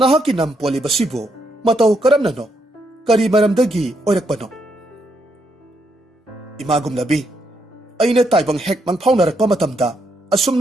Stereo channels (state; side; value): normal; both; correlation 0.77